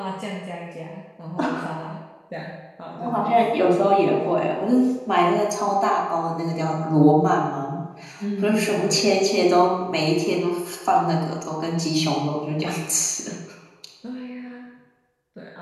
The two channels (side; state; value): both; identical; correlation 1.00